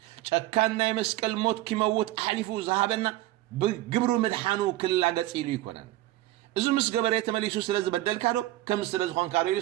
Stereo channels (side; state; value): left; quieter; 16.2 dB